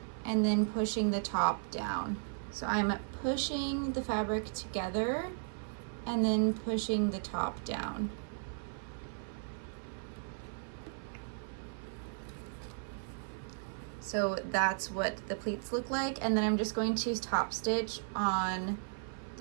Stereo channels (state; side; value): silent; left; 54 dB below the other